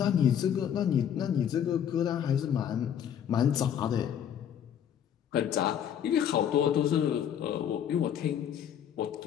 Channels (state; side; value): quieter; right; 9.2 dB